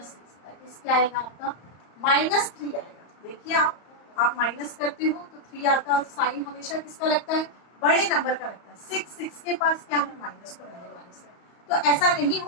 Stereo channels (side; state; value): right; late; 34 ms